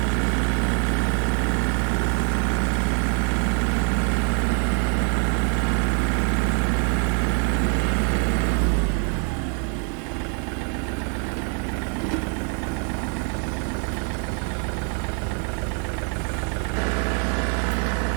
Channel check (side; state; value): left; quieter; 39.9 dB